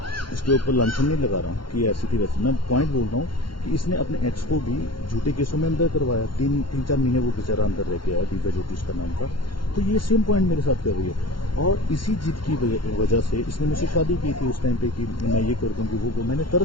इसके ऊपर लांछन नहीं लगा रहा हूँ कि ऐसी थी वैसी। मैं पॉइंट बोल रहा हूँ कि इसने अपने एक्स को भी झूठे केसों में अंदर करवाया। 3-4 महीने वो बेचारा अंदर रह के आया, दिव्या ज्योति उसका नाम था। तो ये सेम पॉइंट मेरे साथ कर रही है। और इसी जिद की वजह से इसने मुझसे शादी की थी उस टाइम पे कि मैं ये कर दूँगी वो। मैंने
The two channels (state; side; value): late; right; 0.73 ms